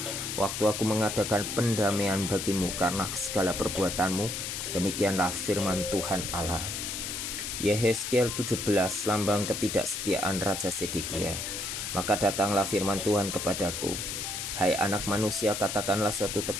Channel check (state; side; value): noise; left; hiss, 4 dB below the sound